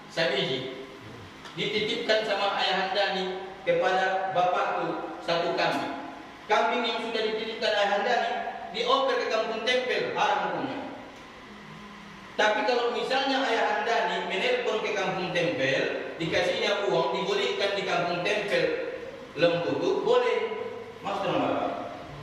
sabiji, dititipkan sama ayahanda nih kepada bapakku satu kambing. Kambing yang sudah dititipkan ayahanda nih dioper ke kampung tempel, haram hukumnya. Tapi kalau misalnya ayahanda nih menelpon ke kampung tempel, dikasihnya uang, dibolehkan di kampung tempel lembu itu boleh. Maksudnya Bapak,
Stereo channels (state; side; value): identical; both; correlation 1.00